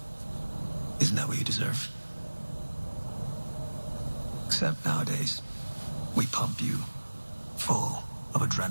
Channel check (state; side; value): inverted; both; correlation -1.00